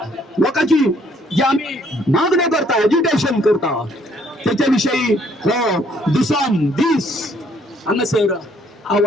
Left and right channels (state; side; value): normal; both; correlation 0.65